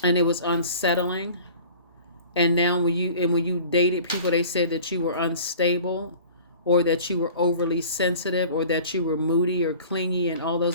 and it was unsettling. And now when you dated people, they said that you were unstable, or that you were overly sensitive, or that you were moody or clingy and all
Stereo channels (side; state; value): both; inverted; correlation -0.44